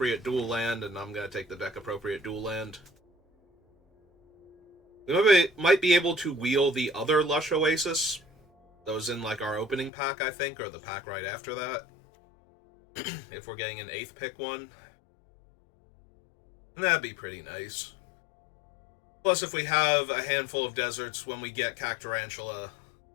dual land, and I'm going to take the deck-appropriate dual land. We might be able to wheel the other Lush Oasis. That was in, like, our opening pack, I think, or the pack right after that. If we're getting an 8th pick one. And that'd be pretty nice. Plus, if we have a handful of deserts when we get Cactarantula,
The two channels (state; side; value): drops out; right; at 9.9 s